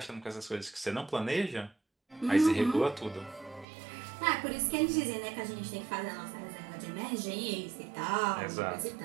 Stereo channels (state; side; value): drops out; left; at 3.7 s